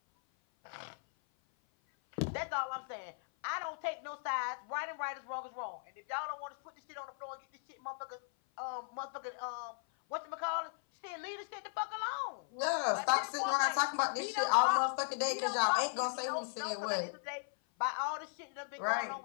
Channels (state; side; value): silent; right; 53 dB below the other